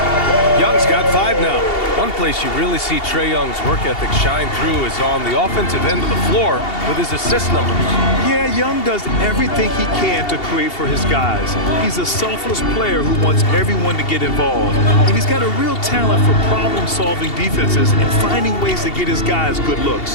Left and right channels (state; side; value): late; right; 2.7 ms